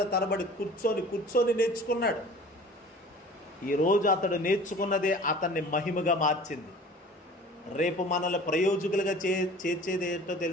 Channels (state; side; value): normal; both; correlation 0.44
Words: తరబడి కూర్చొని నేర్చుకున్నాడు. ఈరోజు అతడు నేర్చుకున్నదే అతన్ని మహిమగా మార్చింది. రేపు మనల్ని ప్రయోజకులుగా చేర్చేది ఏంటో